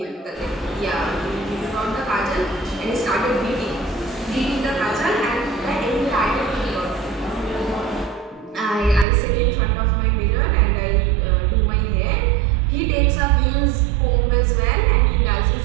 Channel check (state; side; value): drops out; left; at 9.1 s